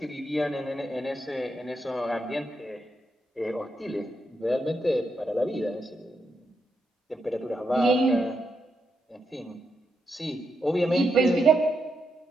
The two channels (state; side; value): normal; both; correlation 0.82